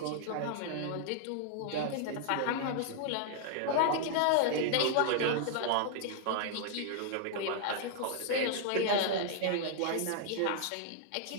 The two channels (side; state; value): both; different; correlation 0.00